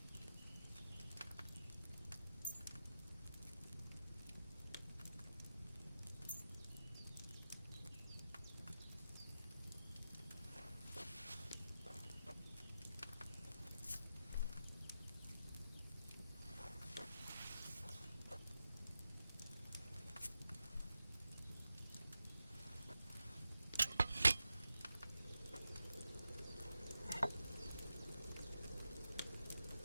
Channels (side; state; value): both; inverted; correlation -0.91